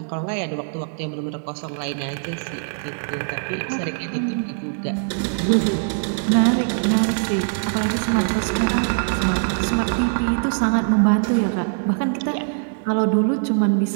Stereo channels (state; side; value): silent; left; 64 dB below the other